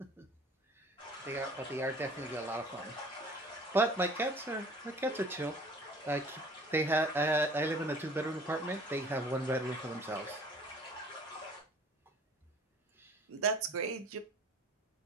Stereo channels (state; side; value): normal; both; correlation 0.49